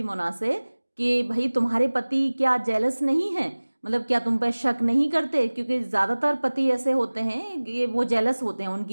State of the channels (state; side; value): inverted; both; correlation -1.00